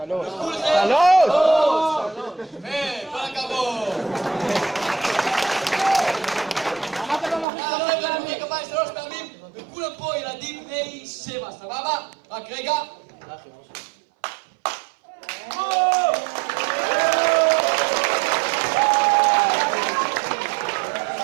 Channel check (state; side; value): drops out; left; at 7.5 s